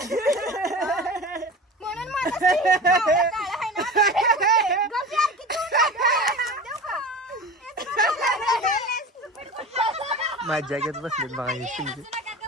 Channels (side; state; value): both; normal; correlation 0.33